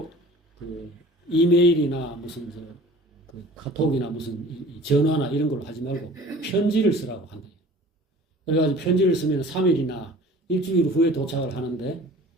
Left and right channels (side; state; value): both; normal; correlation 0.46